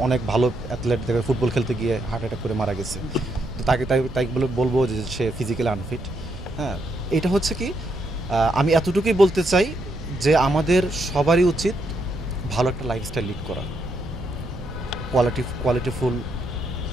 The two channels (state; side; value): noise; right; rumble, 13 dB below the sound